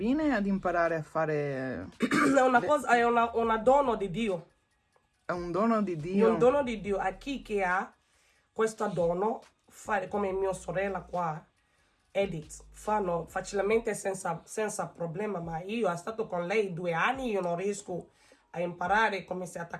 ad imparare a fare... È una dono di Dio. È un dono di Dio. È un dono di Dio a chi che ha questo dono, fare come mia sorella qua, Edith, fanno facilmente senza problema, ma io ho stato con lei 2 anni, io non riesco a imparare come si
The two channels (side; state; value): both; identical; correlation 1.00